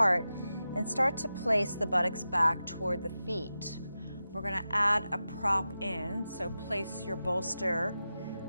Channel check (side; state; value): both; inverted; correlation -0.92